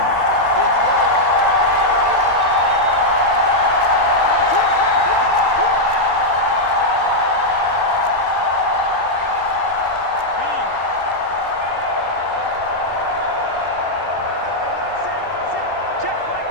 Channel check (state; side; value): late; left; 3.8 ms